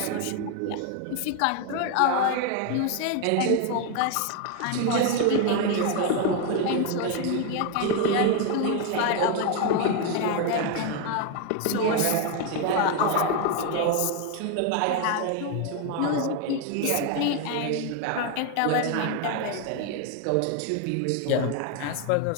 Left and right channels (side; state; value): both; different; correlation 0.01